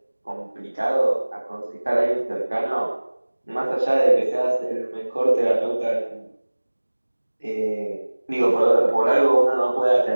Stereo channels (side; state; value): both; inverted; correlation -1.00